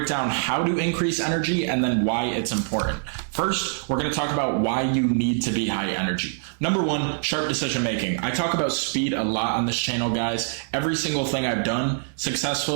down how to increase energy and then why it's important. First, we're going to talk about why you need to be high energy. Number one, sharp decision making. I talk about speed a lot on this channel, guys. Every single thing I've done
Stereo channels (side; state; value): left; silent; digital silence